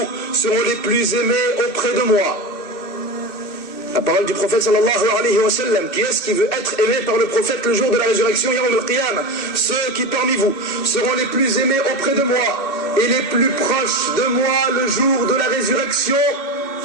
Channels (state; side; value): late; right; 2.6 ms